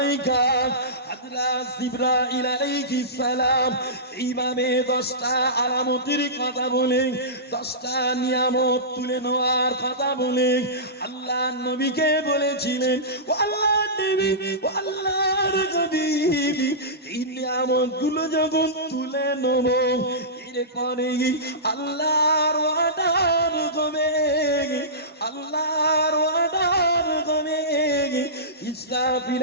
হযরত জিবরাইল আলাইহিস সালাম এইভাবে 10টা আলামতের কথা বলে, 10টা নিয়ামত তুলে নেওয়ার কথা বলে আল্লাহর নবীকে বলেছিলেন, ও আল্লাহর নবী, ও আল্লাহর নবী, এই নিয়ামতগুলো যখন তুলে নেব, এরপরে আল্লাহর ওয়াদার হবে, আল্লাহর ওয়াদার হবে,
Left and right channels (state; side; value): normal; both; correlation -0.19